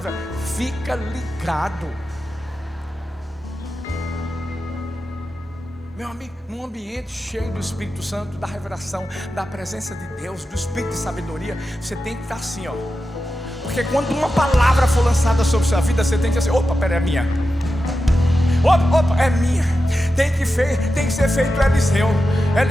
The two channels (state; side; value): normal; both; correlation 0.91